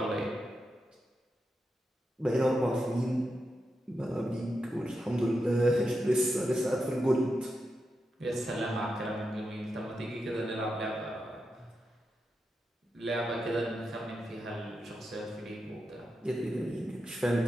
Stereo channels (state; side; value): normal; both; correlation 0.87